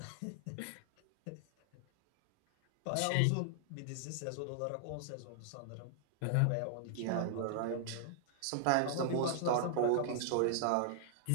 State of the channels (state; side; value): different; both; correlation -0.01